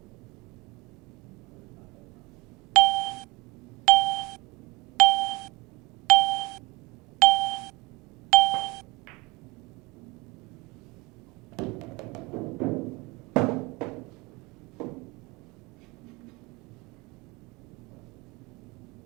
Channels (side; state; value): left; quieter; 24.0 dB